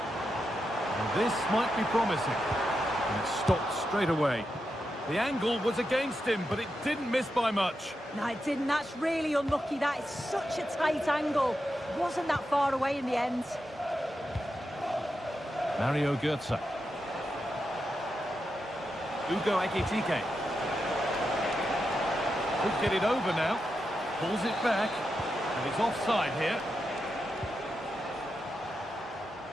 And this might be promising. And it stopped straight away. The angle was against him, but it didn't miss by much. No, it didn't. That's really unlucky. That is such a tight angle. Wasn't that far away in the end. Mario Götze. Ugo Ekitike. Could get it over now. Pulls it back. And it's offside here.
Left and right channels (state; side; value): normal; both; correlation 0.87